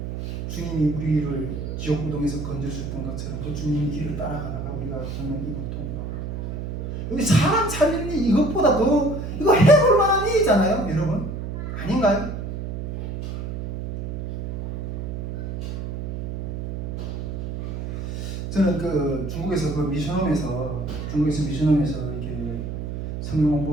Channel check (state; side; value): noise; right; hum, 5 dB below the sound